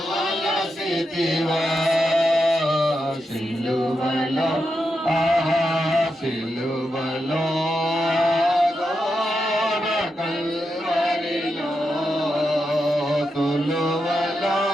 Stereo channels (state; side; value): normal; both; correlation 0.86